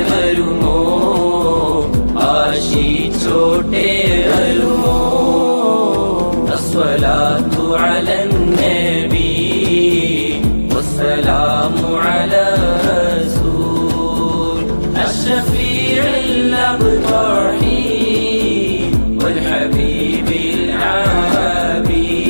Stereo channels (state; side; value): inverted; both; correlation -1.00